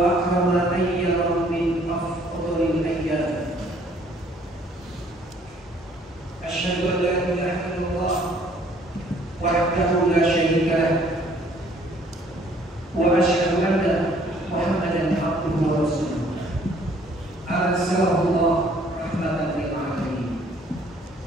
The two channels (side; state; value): both; normal; correlation 0.60